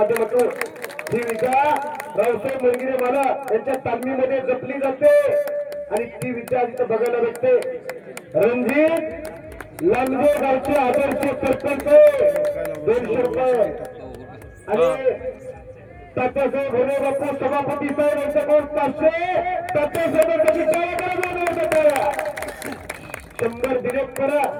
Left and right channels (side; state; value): both; identical; correlation 1.00